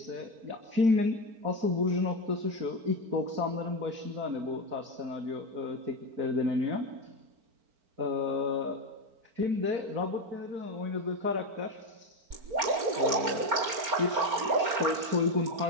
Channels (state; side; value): late; left; 4.3 ms